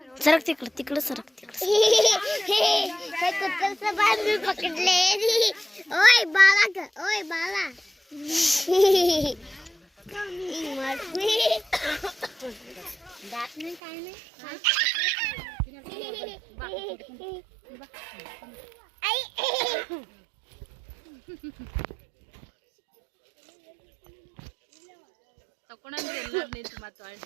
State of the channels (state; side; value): drops out; left; at 13.8 s